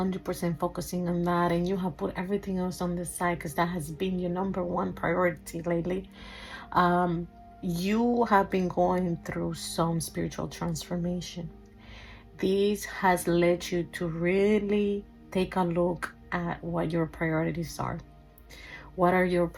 focusing on that, and you have put everything else on the side because that has been your number one priority lately, you have been going through some spiritual transformation. This has led you to really take a look at what your priorities are. What are your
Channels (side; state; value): both; identical; correlation 1.00